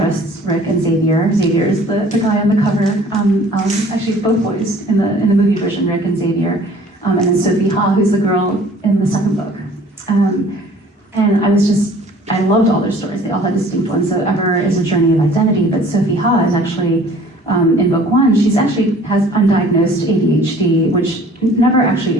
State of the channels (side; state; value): both; normal; correlation 0.51